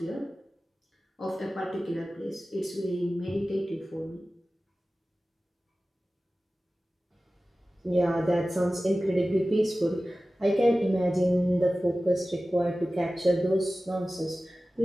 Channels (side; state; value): both; normal; correlation 0.96